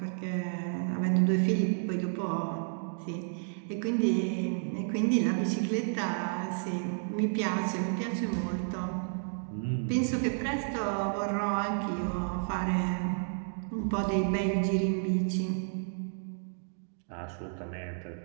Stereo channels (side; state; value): left; silent; digital silence